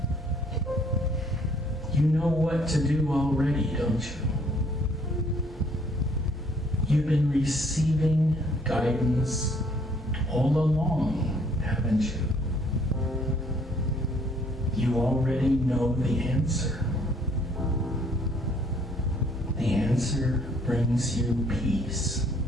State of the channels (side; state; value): both; normal; correlation 0.62